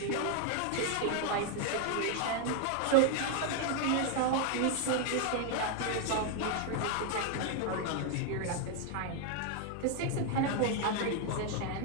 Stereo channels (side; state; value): both; different; correlation 0.00